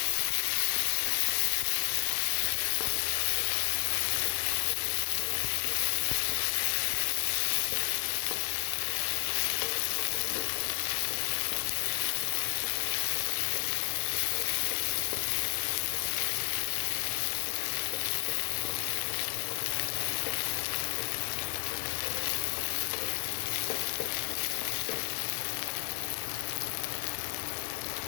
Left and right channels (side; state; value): right; silent; digital silence